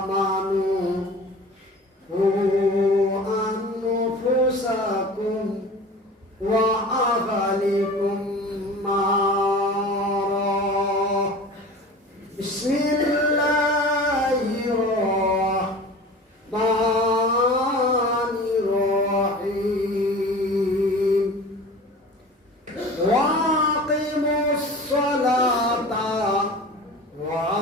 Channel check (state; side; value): normal; both; correlation 0.38